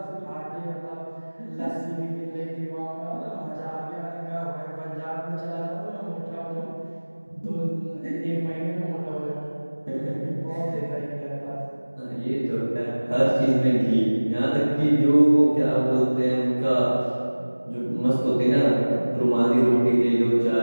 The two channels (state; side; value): inverted; both; correlation -1.00